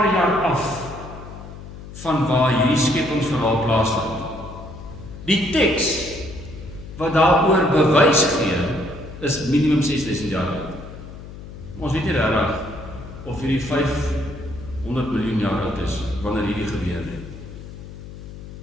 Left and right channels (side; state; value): left; noise; hum, 13 dB below the sound